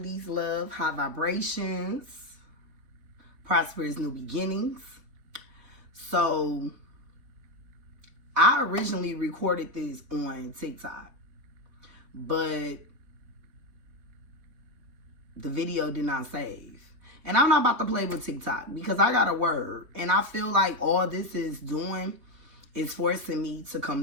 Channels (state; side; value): late; left; 4.1 ms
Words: love, high vibrations, prosperous new beginnings. So, I originally recorded this on TikTok, but the video did not save. And I'm not about to play with TikTok because I got a word. And I feel like all this is doing is forcing me to come